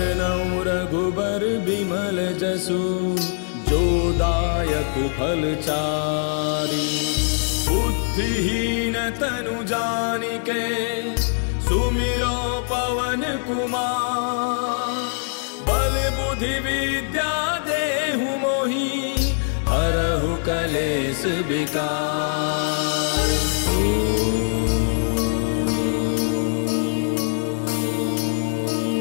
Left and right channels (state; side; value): silent; right; digital silence